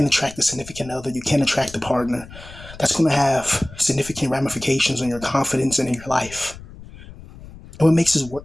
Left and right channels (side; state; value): left; noise; rumble, 17 dB below the sound